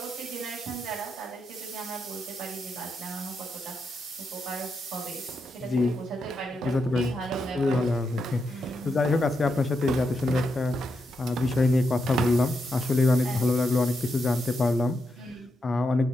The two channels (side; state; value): both; normal; correlation 0.84